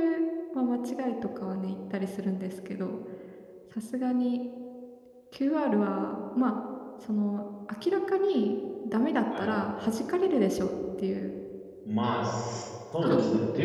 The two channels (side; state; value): both; identical; correlation 1.00